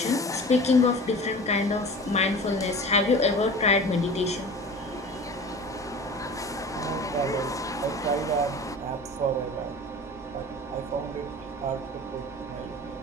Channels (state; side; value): normal; both; correlation 0.38